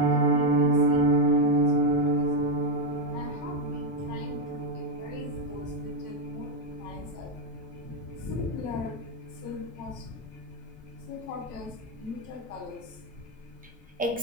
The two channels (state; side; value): normal; both; correlation 0.03